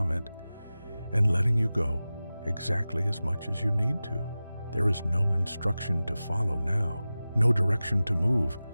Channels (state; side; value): inverted; both; correlation -0.96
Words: and letting you go exactly as much as you need to. There is no instruction to follow now, no direction to move.